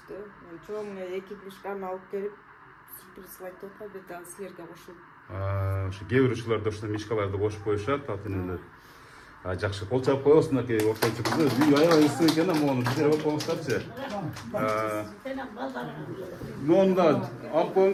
Мен чоң 2 мишканы алып келип, сюрприз кылайт деп атам, бет дагы силерге кошулуп. Ошо кээ бир учурларда ошо мишкаларды кошуп коюшат, атынелер. Жакшы, кол чап коесуң, аке, ортончу кызы. Үй аябай ысык экен, мону бизер алып коюңуздарчы. Мону да алып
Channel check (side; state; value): both; identical; correlation 1.00